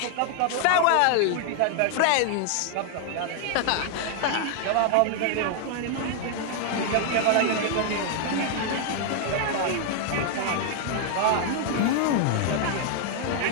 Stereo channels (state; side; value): different; both; correlation 0.00